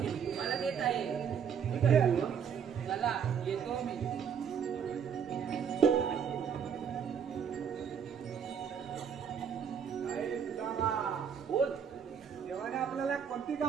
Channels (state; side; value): quieter; left; 7.5 dB